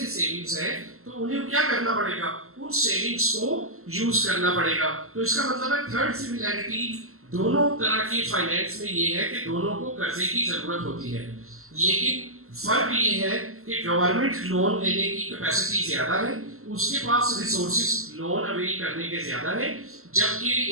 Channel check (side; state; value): left; late; 0.62 ms